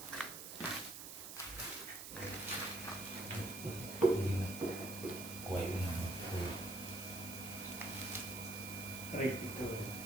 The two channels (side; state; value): right; noise; hiss, 9 dB below the sound